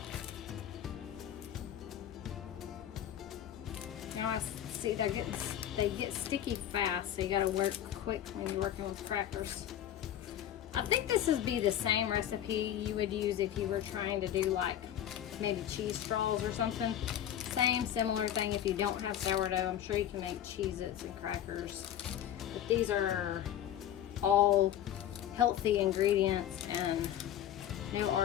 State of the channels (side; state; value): right; quieter; 10.9 dB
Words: Now I see they get sticky fast, so you gotta work quick when you're working with crackers. I think this would be the same recipe you would use if you were trying to do like maybe cheese straws or something. Same, similar thing. If you don't have sourdough, I'm sure you can make Cheez-Its and crackers But these are all healthy ingredients and no